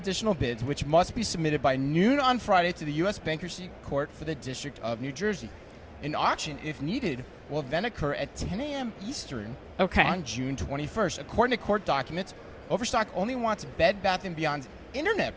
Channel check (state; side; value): identical; both; correlation 1.00